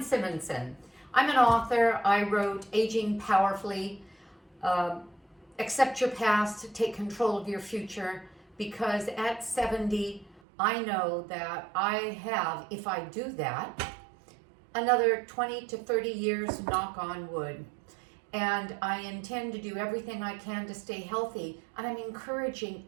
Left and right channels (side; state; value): left; drops out; at 10.4 s